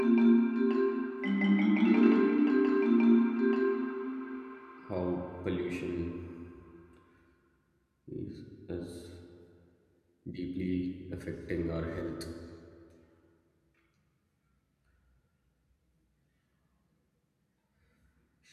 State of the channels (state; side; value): identical; both; correlation 1.00